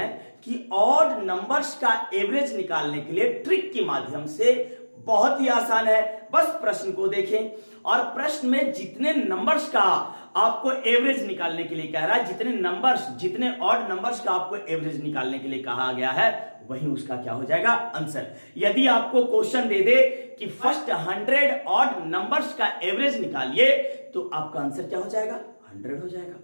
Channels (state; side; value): inverted; both; correlation -1.00